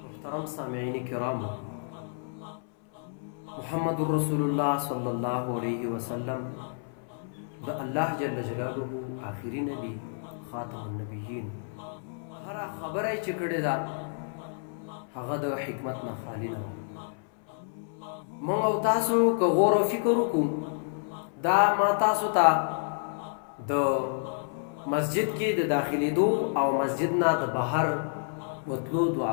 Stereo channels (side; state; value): right; silent; 58 dB below the other